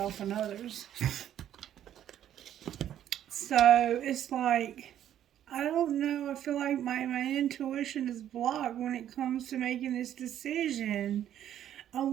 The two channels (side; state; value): left; quieter; 10.9 dB